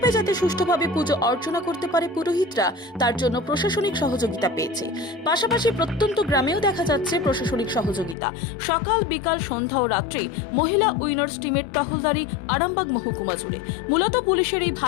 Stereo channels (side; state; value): right; drops out; at 8.2 s